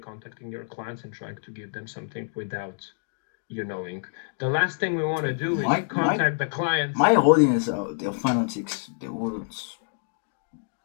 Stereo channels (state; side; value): silent; right; digital silence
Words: your clients and trying to give them something without you knowing. The last thing we want to do is contact the clients. My audience, they're fanatics. They would